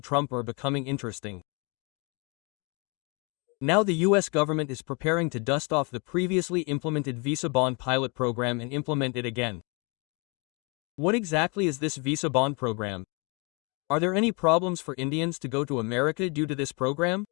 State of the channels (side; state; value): right; quieter; 32.0 dB